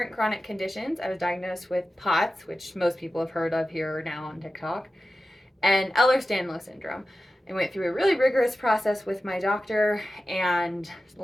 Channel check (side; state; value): both; normal; correlation 0.93